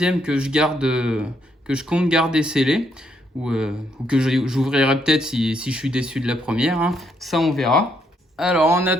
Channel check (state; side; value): normal; both; correlation 0.74